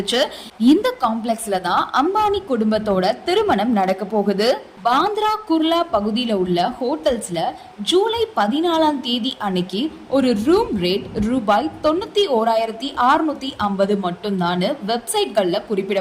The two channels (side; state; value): both; identical; correlation 1.00